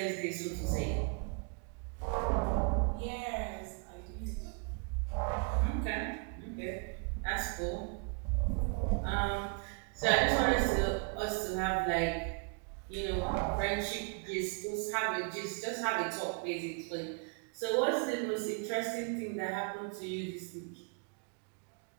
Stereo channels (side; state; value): left; quieter; 36.6 dB